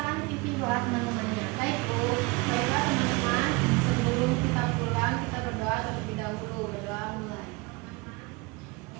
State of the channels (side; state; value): left; quieter; 25.8 dB